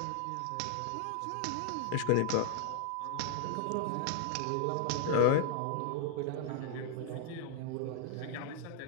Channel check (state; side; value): different; both; correlation 0.00